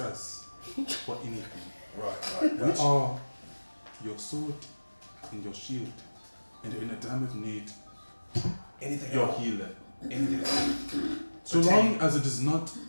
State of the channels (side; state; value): both; inverted; correlation -1.00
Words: for anything. Right. We are your sword and your shield, and in a time of need, Anything your else? healer. Anything else? So long as it does not